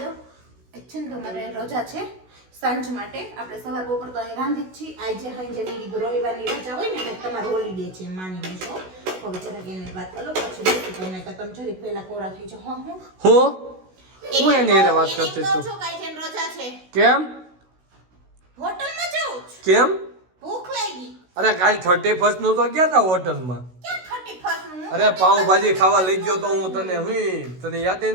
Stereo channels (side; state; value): left; late; 16 ms